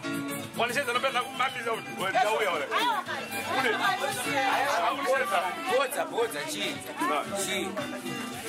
One says that I'm not out. What's a cheese?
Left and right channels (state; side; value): identical; both; correlation 1.00